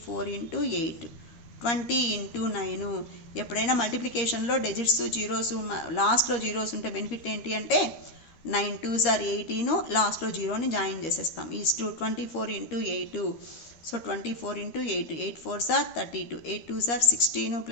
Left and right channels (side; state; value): right; late; 13 ms